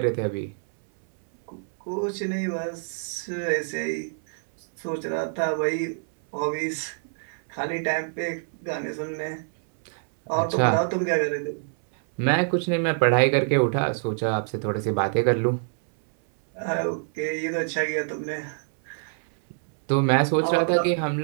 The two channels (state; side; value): silent; left; 61 dB below the other